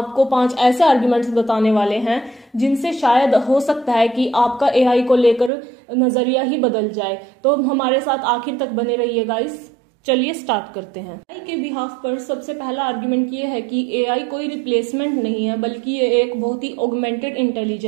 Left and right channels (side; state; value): left; drops out; at 5.5 s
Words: 5 ऐसे आर्ग्यूमेंट्स बताने वाले हैं जिनसे शायद हो सकता है कि आपका एआई को लेकर नजरिया ही बदल जाए। तो हमारे साथ आखिर तक बने रहिए गाइस। चलिए स्टार्ट करते हैं। एआई के बिहाफ पर सबसे पहला आर्ग्यूमेंट ये है कि एआई कोई रिप्लेसमेंट नहीं है, बल्कि ये एक बहुत ही ऑगमेंटेड